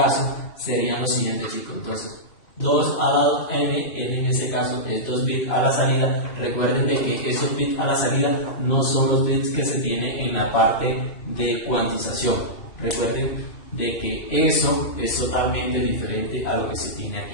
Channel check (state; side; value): late; right; 2.8 ms